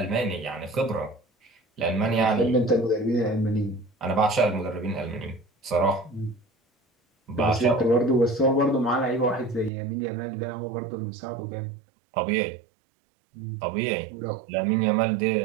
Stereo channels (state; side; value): drops out; left; at 9.7 s